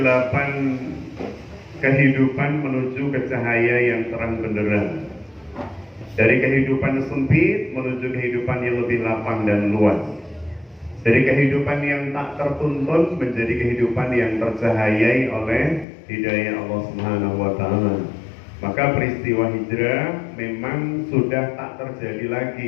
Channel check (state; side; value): drops out; right; at 15.9 s